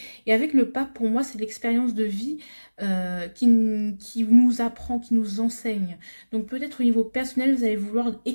Et avec le pape, pour moi, c'est l'expérience de vie qui nous apprend, qui nous enseigne. Donc peut-être au niveau personnel, vous allez vouloir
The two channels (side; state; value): both; inverted; correlation -1.00